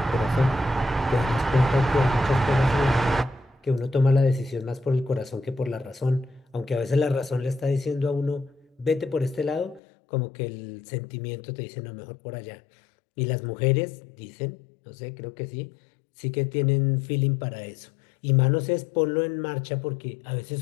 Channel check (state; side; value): drops out; right; at 9.8 s